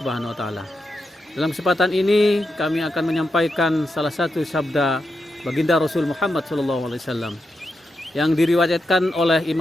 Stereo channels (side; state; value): both; normal; correlation 0.86